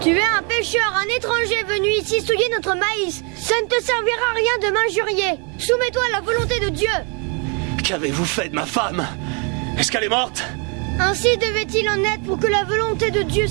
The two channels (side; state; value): left; quieter; 35.1 dB